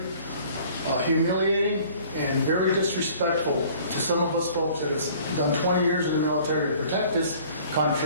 humiliating and very disrespectful to some of us folks that have done 20 years in the military to protect this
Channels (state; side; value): inverted; both; correlation -0.52